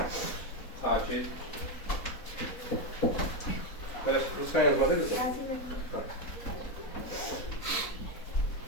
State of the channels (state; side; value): late; right; 4.1 ms